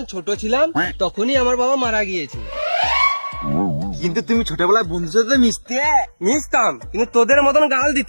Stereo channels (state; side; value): inverted; both; correlation -1.00